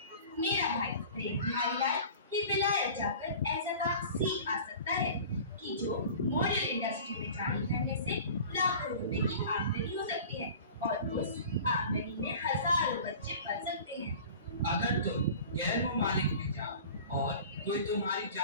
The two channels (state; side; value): inverted; both; correlation -0.41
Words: मेरा भाई प्रेम बिहारी लाल ही विलायत जाकर ऐसा काम सीख आ सकता है कि जो मॉडल इंडस्ट्री में जारी करने से लाखों रुपए की आमदनी हो सकती है और उस आमदनी में हजारों बच्चे पल सकते हैं। अगर तुम गैर मुमालिक में जाओ और कोई तुम्हारी